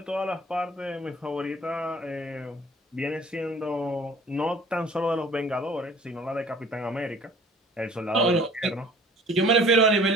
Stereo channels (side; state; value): both; normal; correlation 0.49